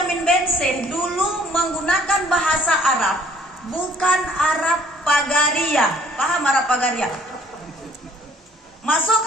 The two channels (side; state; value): both; normal; correlation 0.58